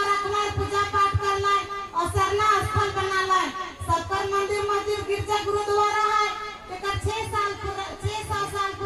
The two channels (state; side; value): identical; both; correlation 1.00